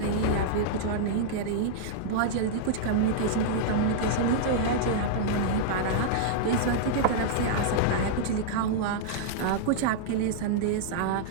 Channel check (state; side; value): different; both; correlation -0.01